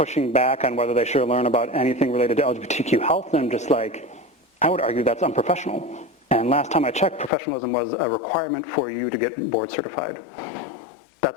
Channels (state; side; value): drops out; right; at 7.3 s